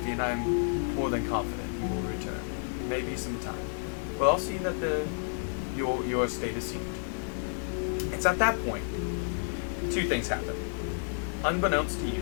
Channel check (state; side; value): silent; right; digital silence